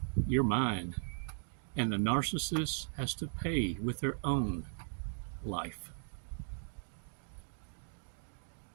You're mine. And the narcissist has to pay with their own life.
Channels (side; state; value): left; silent; digital silence